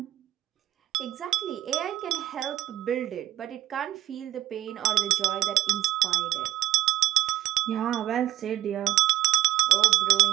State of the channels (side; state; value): left; quieter; 14.4 dB